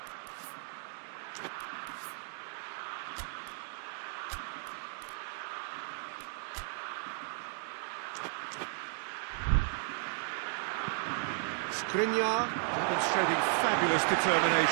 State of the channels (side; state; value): left; silent; 55 dB below the other